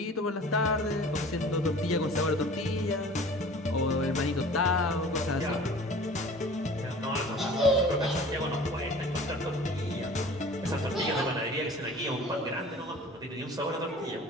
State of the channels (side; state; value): both; normal; correlation 0.44